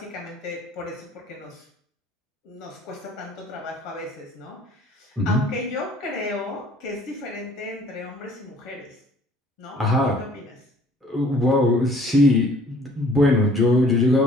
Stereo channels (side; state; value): both; normal; correlation 0.55